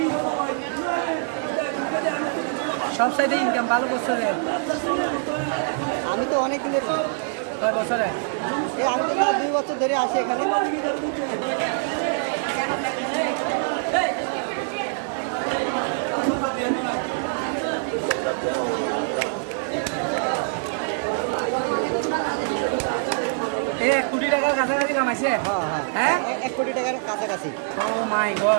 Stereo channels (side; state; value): left; silent; digital silence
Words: আমি তো অনেক দিনের, আমি তো 2 বছর ধরে আসি এখানে। $1 কোটি কাছাকাছি কামাইছে। হ্যাঁ, 1 কোটি টাকার কাছাকাছি। ও মাই